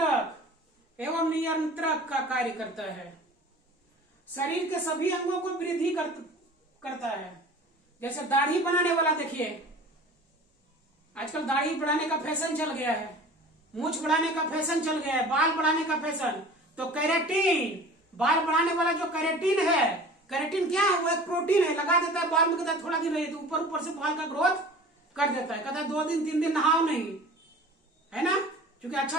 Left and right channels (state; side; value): normal; both; correlation 0.42